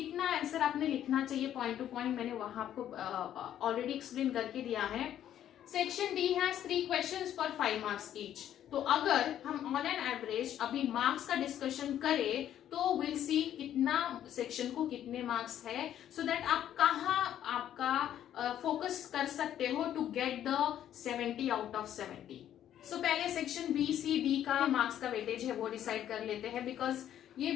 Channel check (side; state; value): right; quieter; 10.9 dB